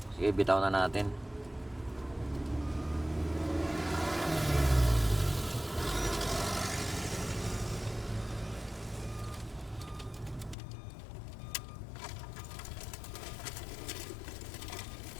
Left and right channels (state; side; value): drops out; right; at 10.6 s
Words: Sige, bitaw na natin.